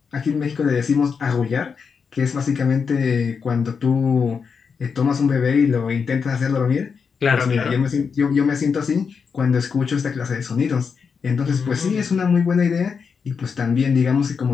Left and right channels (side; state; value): right; quieter; 5.9 dB